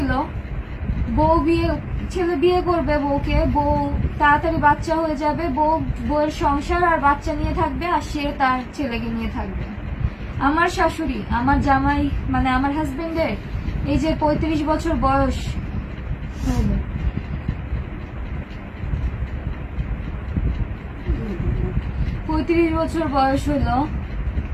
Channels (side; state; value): both; identical; correlation 1.00